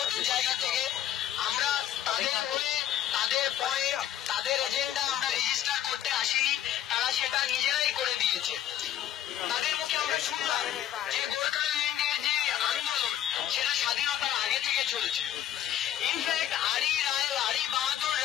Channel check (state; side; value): quieter; right; 11.5 dB